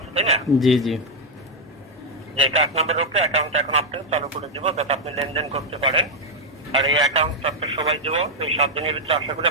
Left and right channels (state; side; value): normal; both; correlation 0.01